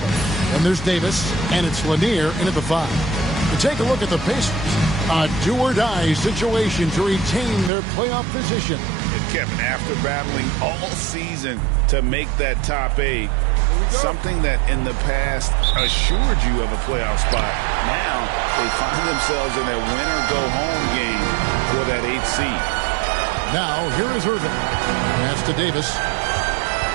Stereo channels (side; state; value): left; drops out; at 7.7 s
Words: Then there's Davis. And it's Lanier in at the five. To take a look at the Pacers. A do-or-die situation to retain their playoff position. Kevin, after battling all season to make that top 8, something that in the past assured you of a playoff spot, now they find themselves in a win-or-go-home game for that 8th seed. Now, here is Irving. Pass to Davis.